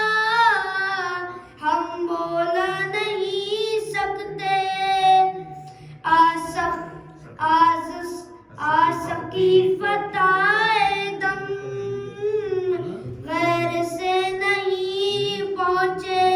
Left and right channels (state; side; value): identical; both; correlation 1.00